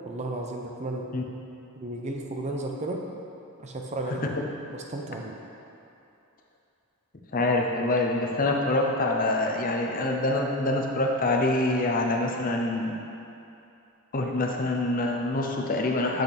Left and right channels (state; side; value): normal; both; correlation 0.21